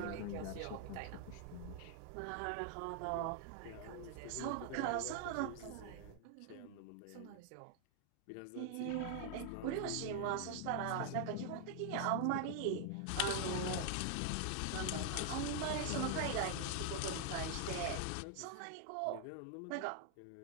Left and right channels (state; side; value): different; both; correlation 0.00